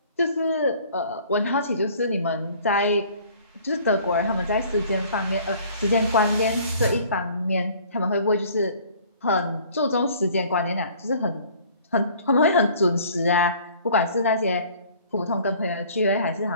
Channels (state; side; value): inverted; both; correlation -0.53